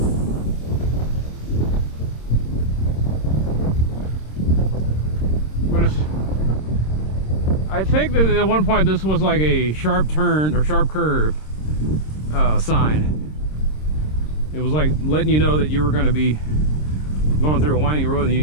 I think that at one point this was like a sharp turn or sharp curve sign. It was like letting you know that you were going to be going through a winding road and you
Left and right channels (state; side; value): late; right; 26 ms